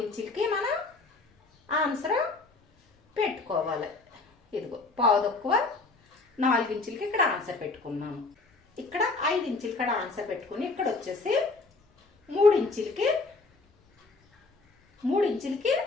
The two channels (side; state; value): right; quieter; 3.6 dB